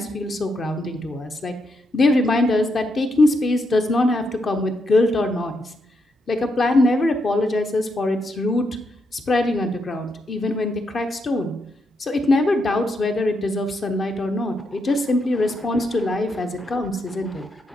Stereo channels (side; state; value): both; normal; correlation 0.81